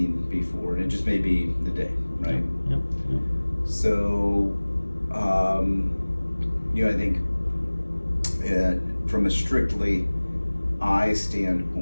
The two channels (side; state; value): both; inverted; correlation -1.00